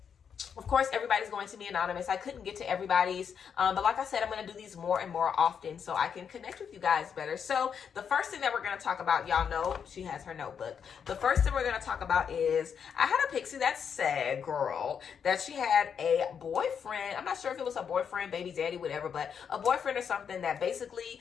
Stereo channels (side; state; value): right; quieter; 7.2 dB